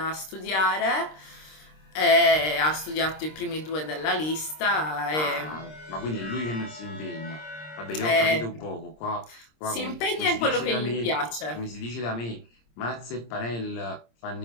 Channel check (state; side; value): late; right; 26 ms